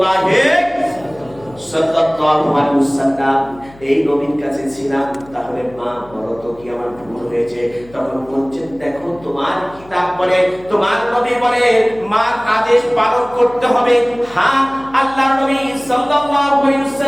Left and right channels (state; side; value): noise; left; hum, 23 dB below the sound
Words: সাল্লাল্লাহু আলাইহি ওয়াসাল্লাম এই নবীর কাছে ছিলাম, তাহলে মা বলো তো কি আমার ভুল হয়েছে? তখন বলছেন, দেখো তোমার কিতাব বলে, তোমার নবী বলে মার আদেশ পালন করতে হবে। হ্যাঁ, আল্লাহর নবী সাল্লাল্লাহু আলাইহি